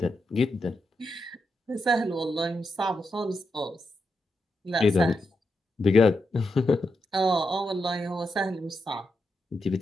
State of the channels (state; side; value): normal; both; correlation 0.85